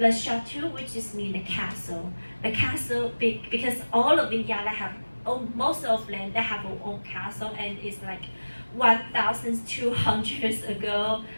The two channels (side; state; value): both; inverted; correlation -1.00